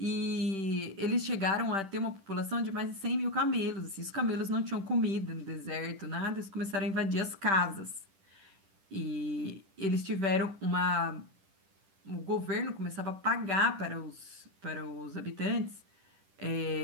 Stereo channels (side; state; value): left; late; 10 ms